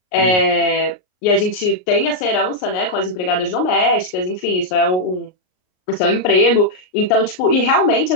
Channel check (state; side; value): late; right; 38 ms